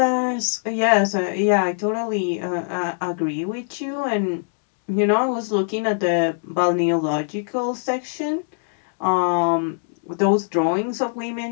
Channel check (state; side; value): silent; right; digital silence